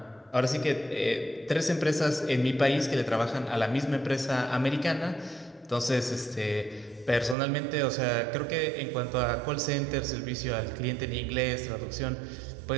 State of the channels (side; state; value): left; drops out; at 7.4 s